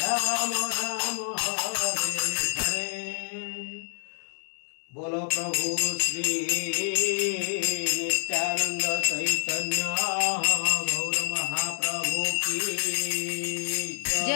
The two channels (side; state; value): right; silent; 60 dB below the other